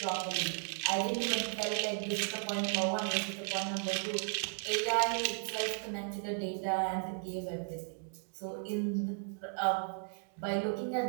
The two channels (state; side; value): silent; left; 54 dB below the other